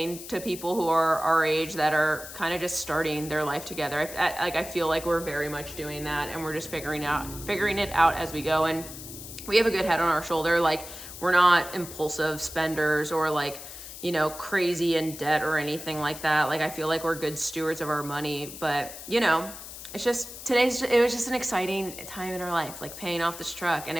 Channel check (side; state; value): left; noise; hiss, 12 dB below the sound